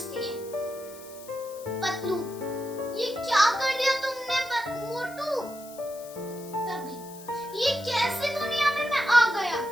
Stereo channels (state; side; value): noise; left; hiss, 18 dB below the sound